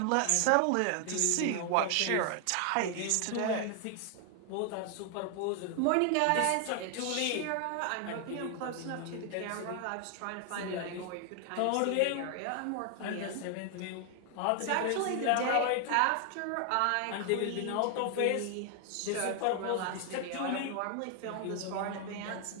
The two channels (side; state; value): both; different; correlation 0.00